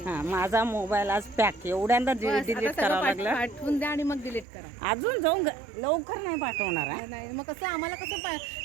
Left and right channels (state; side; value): drops out; left; at 4.5 s